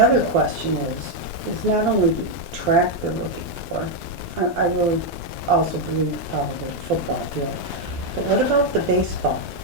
question is not only the track they're looking for, I really also believe probably the football field, but what about the baseball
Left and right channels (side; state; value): left; late; 12 ms